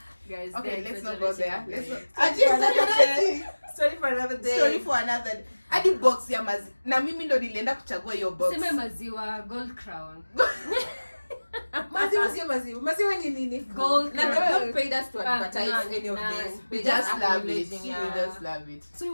Guys, okay, they're let's not go there. exaggerating. Story for another day. Story for another day. Hadi box ya na mimi ndo nilienda kuchagua hiyo box. Sema maziwa Gold Crown. Maziwa sio maziwa. Maziwa ni nini? Gold Na they Crown. not paid us to advertise none, any of none. this. We just love it. acknowledging, We just love it. So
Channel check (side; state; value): both; inverted; correlation -1.00